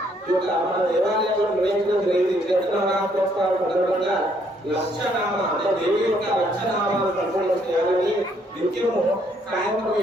మన దేవాలయంలో నిర్వహించడం జరిగింది. చైత్రనవరాత్రోత్సవాల సందర్భంగా లక్షనామ అంటే దేవి యొక్క లక్షనామాలు సంపూర్ణ చేయాలని నిత్యము సాయంత్రం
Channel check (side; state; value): both; normal; correlation 0.68